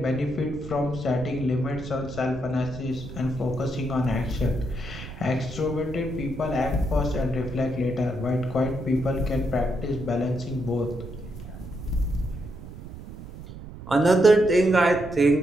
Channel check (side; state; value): right; noise; rumble, 13 dB below the sound